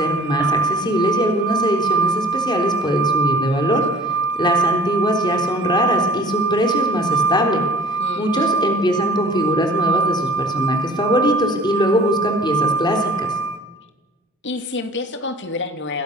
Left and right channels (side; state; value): both; normal; correlation 0.49